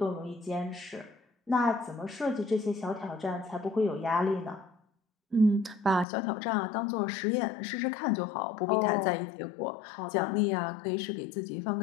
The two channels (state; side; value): drops out; right; at 6.1 s